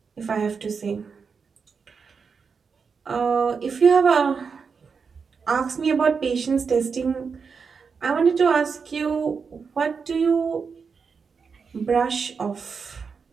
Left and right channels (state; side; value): quieter; left; 5.6 dB